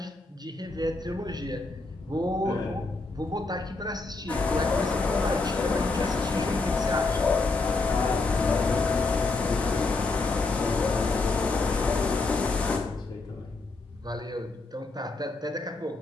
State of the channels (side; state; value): right; quieter; 3.5 dB